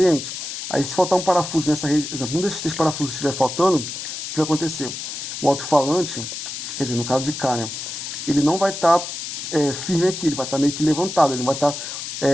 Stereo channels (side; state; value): left; noise; hiss, 7 dB below the sound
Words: Aí se faltar um parafuso nessa rede, exemplo, um desses 3 parafusos estiver faltando, o que vai acontecer? O alto-falante, quer dizer, no caso de cá, né, ele não vai estar firme aqui, ele vai estar meio que levantado, ele não vai estar